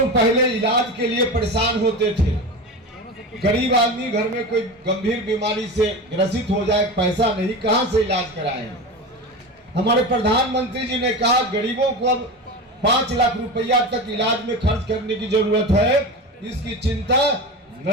पहले इलाज के लिए परेशान होते थे। गरीब आदमी घर में कोई गंभीर बीमारी से ग्रसित हो जाए, पैसा नहीं, कहां से इलाज कराएं। हमारे प्रधानमंत्री जी ने कहा गरीबों को अब 5 लाख रुपया तक इलाज में खर्च करने की जरूरत है। इसकी चिंता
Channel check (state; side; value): normal; both; correlation 0.26